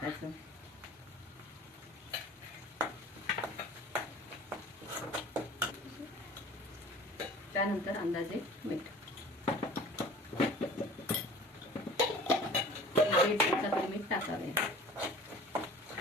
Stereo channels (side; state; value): both; normal; correlation 0.44